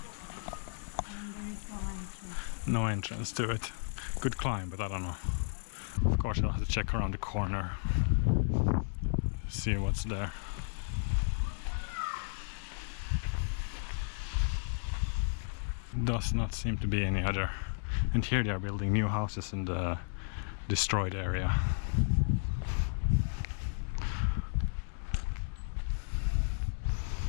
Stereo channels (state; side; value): silent; right; digital silence